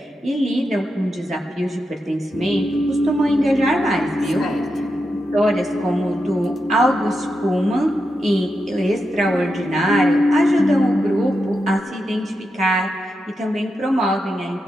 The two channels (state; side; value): normal; both; correlation 0.87